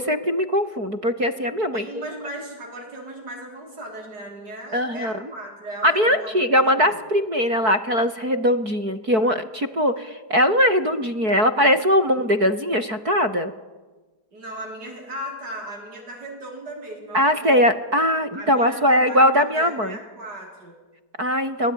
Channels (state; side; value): late; left; 4.6 ms